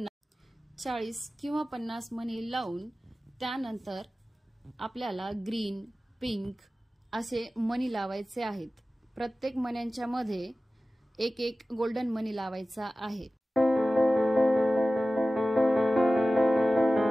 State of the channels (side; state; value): both; normal; correlation 0.96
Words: 50 मनी लावून त्यानंतर आपल्याला ग्रीन, पिंक असे मनी लावायचे आहेत। प्रत्येक मण्यांच्या मध्ये एक एक गोल्डन मनी लावायचा आहे।